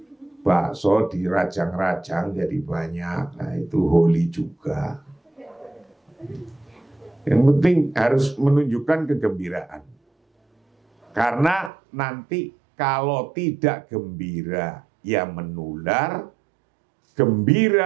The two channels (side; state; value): left; drops out; at 11.7 s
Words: Bakso dirajang-rajang jadi banyak, nah itu holy juga. Yang penting harus menunjukkan kegembiraan. Karena nanti kalau tidak gembira, ya menular.